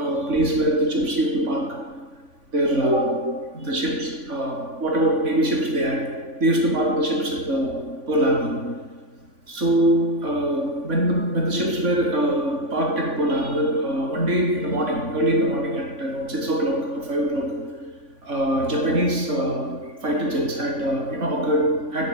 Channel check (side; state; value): left; late; 3.5 ms